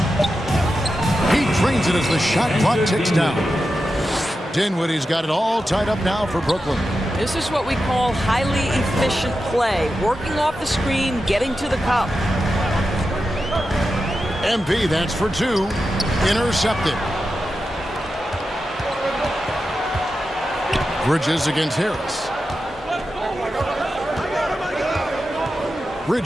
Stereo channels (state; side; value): normal; both; correlation 0.90